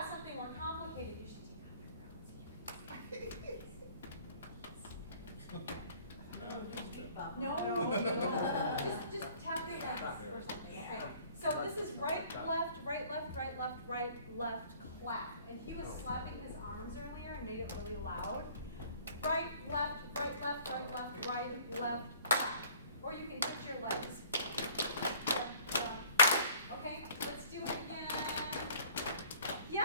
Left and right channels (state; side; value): inverted; both; correlation -0.53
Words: something more complicated. You should take off your glasses. No. Just tap your legs or something. Okay. So this is right, left, right, left, right, left, right, left, clap. And he was slapping his arms earlier and made it really loud. Right, left, right, left, right, left, right, left, clap. Or you can hit your legs. Okay, let's do it again.